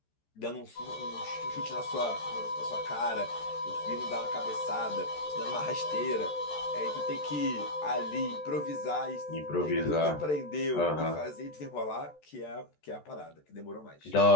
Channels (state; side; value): late; right; 14 ms